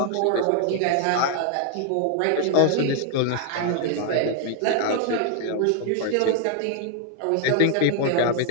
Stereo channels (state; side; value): different; both; correlation 0.00